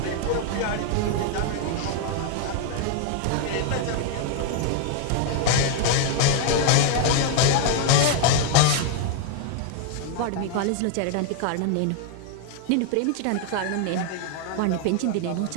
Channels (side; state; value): both; different; correlation 0.00